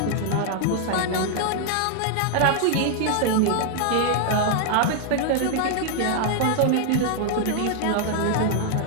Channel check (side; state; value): both; different; correlation 0.00